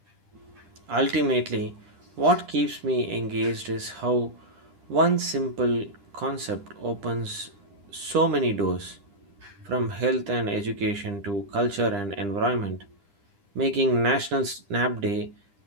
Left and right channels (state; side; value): late; left; 10 ms